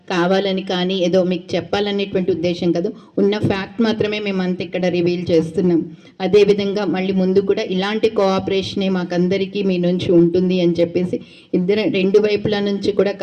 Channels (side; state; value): both; identical; correlation 1.00